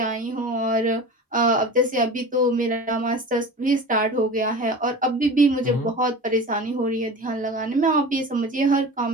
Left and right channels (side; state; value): both; normal; correlation 0.34